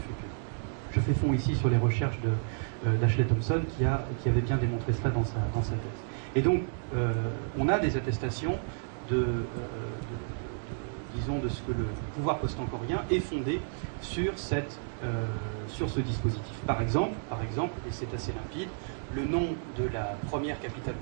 Je fais fond ici sur les recherches d'Ashley Thompson qui avait bien démontré cela dans sa thèse. Et donc, on a des attestations disons, de ce que le pouvoir post-angkorien est fondé sur ce dispositif. Par exemple, et c'est assez limpide, le nom de la première capitale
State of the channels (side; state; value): left; silent; digital silence